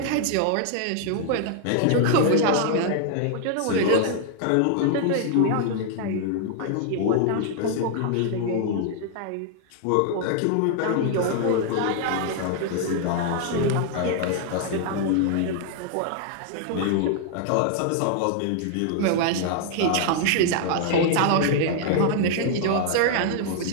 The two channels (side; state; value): both; different; correlation 0.00